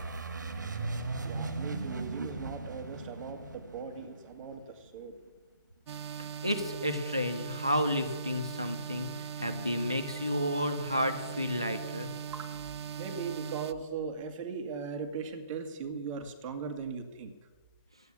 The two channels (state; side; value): inverted; both; correlation -0.63